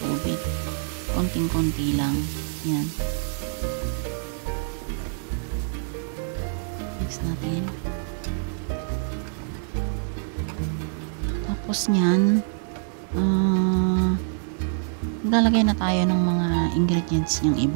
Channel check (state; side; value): silent; left; 61 dB below the other